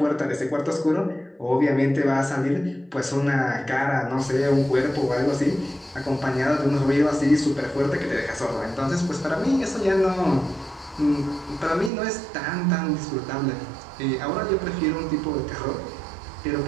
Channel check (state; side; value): drops out; left; at 11.9 s